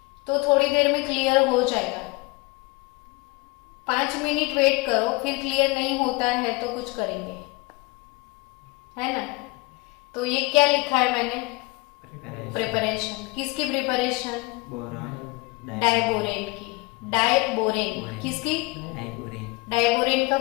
तो थोड़ी देर में क्लियर हो जाएगा। 5 मिनट वेट करो, फिर क्लियर नहीं होता है तो कुछ करेंगे, है ना। तो ये क्या लिखा है मैंने? प्रिपरेशन। किसकी प्रिपरेशन? डाइबोरेन की। डाइबोरेन किसकी? डाइबोरेन का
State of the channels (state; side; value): quieter; right; 24.9 dB